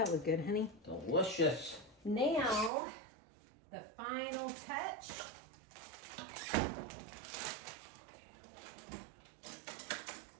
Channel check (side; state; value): left; drops out; at 2.7 s